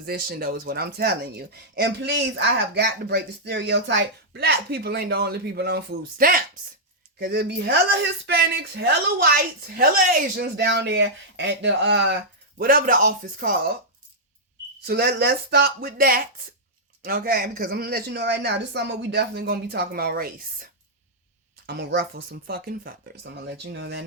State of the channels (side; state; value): both; normal; correlation -0.08